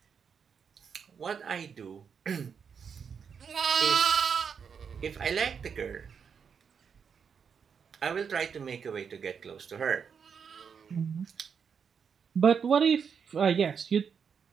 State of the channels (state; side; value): quieter; left; 6.7 dB